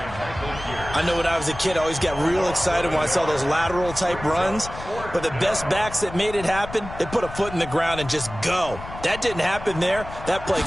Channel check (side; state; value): left; noise; rumble, 12 dB below the sound